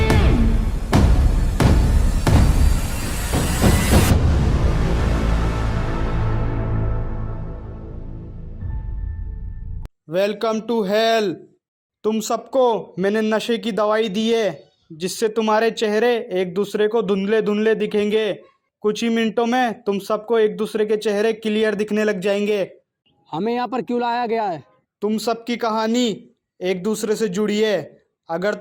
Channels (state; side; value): identical; both; correlation 1.00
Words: Welcome to hell. तुम सबको मैंने नशे की दवाई दी है जिससे तुम्हारे चेहरे एक दूसरे को धुंधले धुंधले दिखेंगे। कुछ ही मिनटों में तुम सबको एक दूसरे के चेहरे क्लियर दिखने लग जाएंगे। हमें यहाँ पर क्यों लाया गया है? तुम सबकी कहानी एक दूसरे से जुड़ी है। अगर